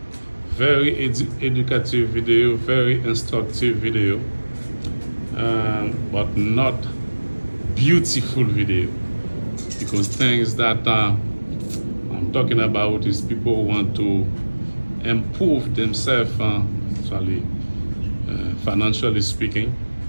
very educative video, very instructive video, but not beautiful video, because things that I'm talking about is people who want to improve themselves, actually, financially speaking,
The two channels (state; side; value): inverted; both; correlation -1.00